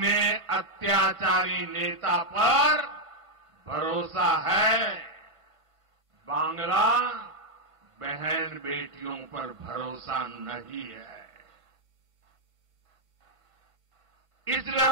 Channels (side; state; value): left; late; 6.1 ms